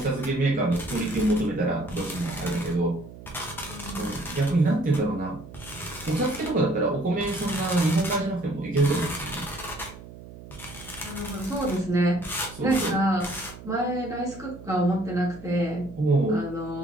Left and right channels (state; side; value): noise; right; hum, 16 dB below the sound